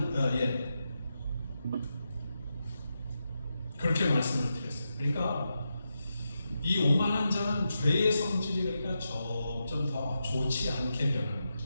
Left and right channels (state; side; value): inverted; both; correlation -0.87